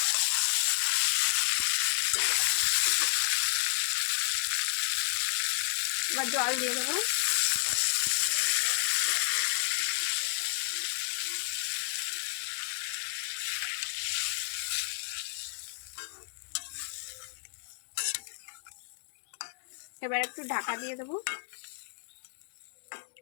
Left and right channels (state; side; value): silent; right; digital silence